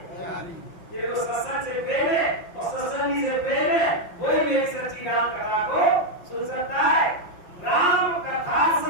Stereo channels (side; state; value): right; late; 5.6 ms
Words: जिनको सत्संग से प्रेम है और सत्संगी से प्रेम है, वही मेरी सच्ची राम कथा को सुन सकता है। राम कथा